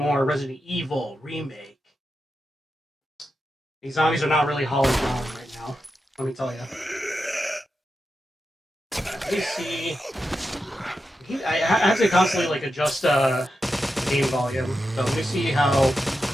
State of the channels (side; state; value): both; normal; correlation 0.88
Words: Resident Evil Remake. These zombies are not really hauling down right now, let me tell you. Let me see. I have to constantly like adjust game volume, so let me see how